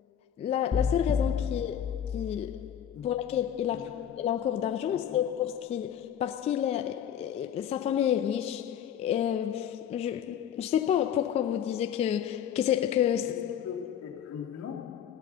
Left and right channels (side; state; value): right; quieter; 9.3 dB